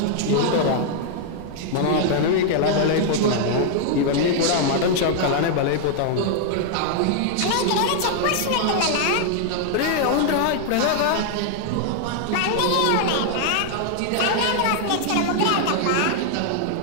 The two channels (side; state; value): both; different; correlation 0.00